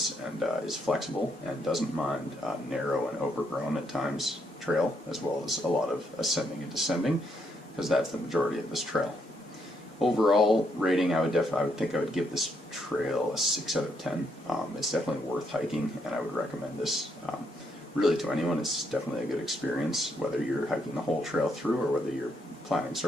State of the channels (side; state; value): both; normal; correlation 0.75